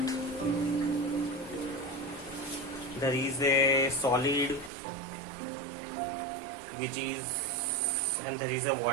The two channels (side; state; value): left; drops out; at 4.7 s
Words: there is a solid which is, and there is a